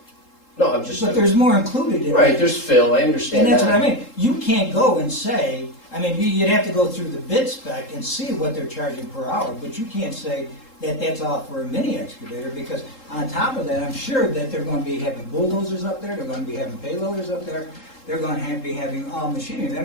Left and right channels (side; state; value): right; late; 3.7 ms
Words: No, I'm just. but there's more included in it. Right, there's fill, I understand And that. that's what I mean. You can't go and say, I mean, you'd have to go through the bid spec and see what they're charging per hour, but you can't say that that's all for a mini excavator, because on top of that, I'm sure that they're gonna be having bulldozers up there, they're gonna be having payloaders up there, they're gonna be having all machinery, they're